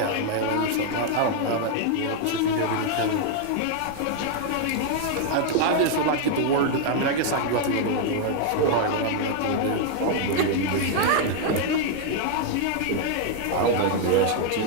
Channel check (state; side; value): different; both; correlation 0.00